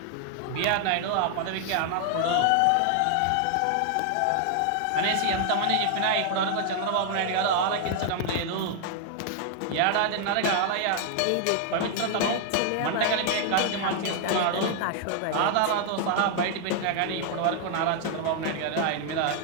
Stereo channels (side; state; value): both; different; correlation 0.00